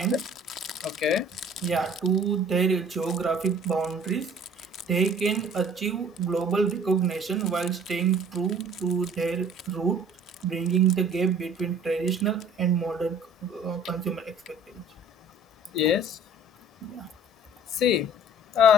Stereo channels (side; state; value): both; normal; correlation 0.51